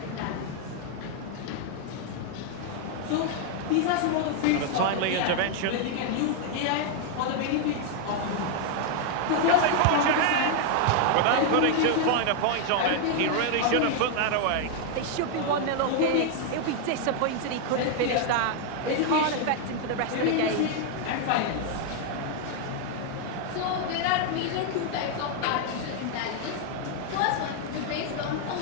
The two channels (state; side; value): different; both; correlation 0.00